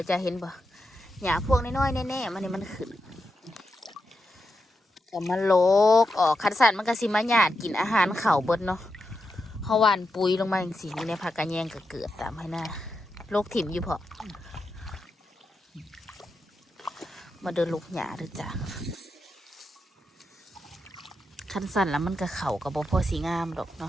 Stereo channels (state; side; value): normal; both; correlation 0.87